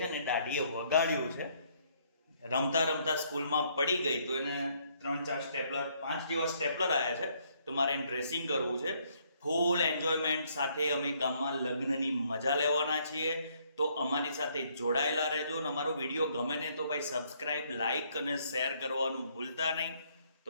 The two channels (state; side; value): inverted; both; correlation -0.68